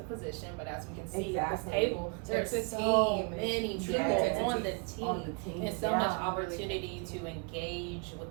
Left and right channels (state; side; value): quieter; left; 34.2 dB